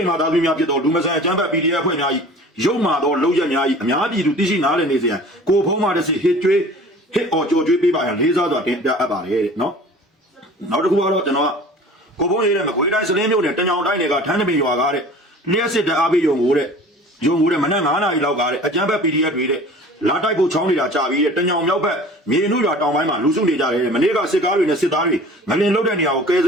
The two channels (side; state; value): both; normal; correlation 0.44